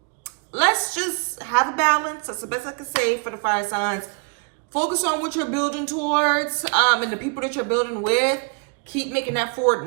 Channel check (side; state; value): left; quieter; 37.0 dB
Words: let's just have a balance. That's the best I can say for the fire signs. Focus on what you're building towards, and the people that you're building with. Keep making that forward